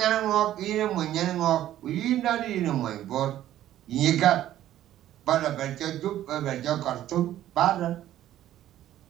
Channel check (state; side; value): quieter; left; 12.7 dB